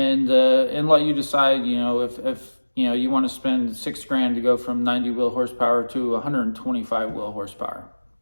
let you decide, if you want to spend $6,000 to go from 90 wheel horsepower to 125 wheel horsepower.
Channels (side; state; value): both; inverted; correlation -1.00